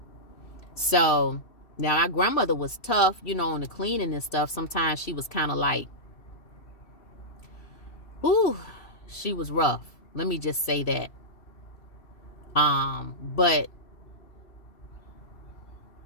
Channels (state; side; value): late; right; 2.8 ms